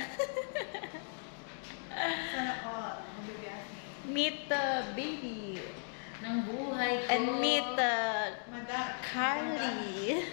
Sana all. Meet the baby. Ng buhay ko. And meet Carly.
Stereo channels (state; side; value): silent; right; digital silence